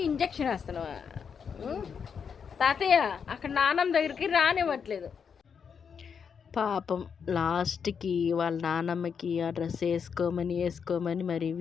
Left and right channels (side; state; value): right; quieter; 6.7 dB